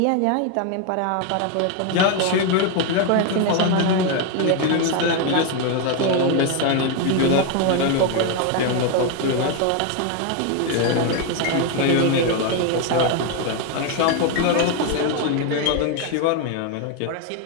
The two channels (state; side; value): different; both; correlation 0.01